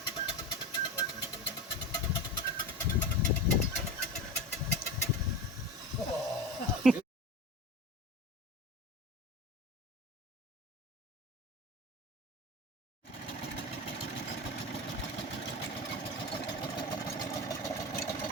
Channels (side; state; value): both; normal; correlation 0.27